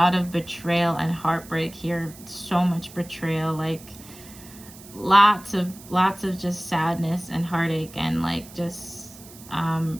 of betrayal and heartbreak here. So much betrayal, like lots of just sadness and heartache, and like just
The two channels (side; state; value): right; noise; hiss, 19 dB below the sound